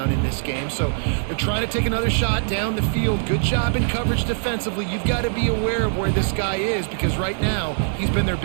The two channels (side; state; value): left; silent; digital silence